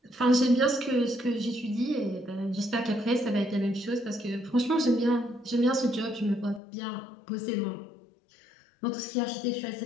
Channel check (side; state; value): right; drops out; at 6.6 s